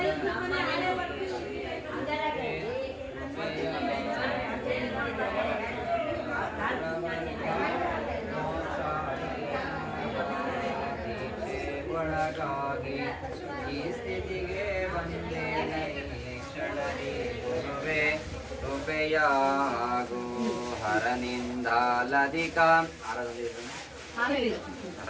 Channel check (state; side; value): identical; both; correlation 1.00